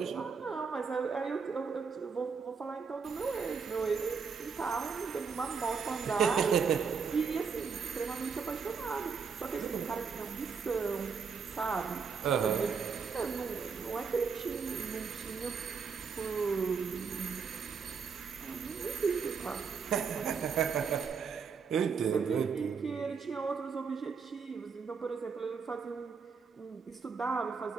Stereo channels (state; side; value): quieter; left; 5.7 dB